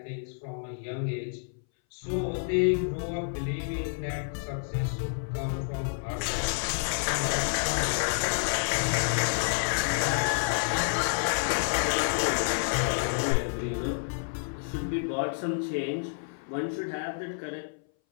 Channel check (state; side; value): silent; right; 58 dB below the other